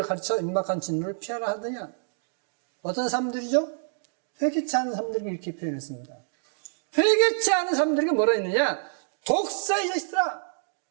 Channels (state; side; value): silent; left; digital silence